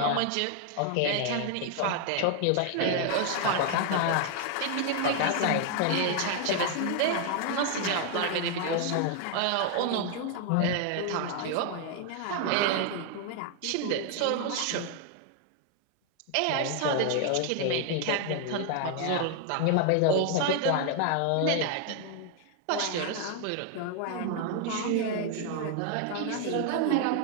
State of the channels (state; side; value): different; both; correlation 0.00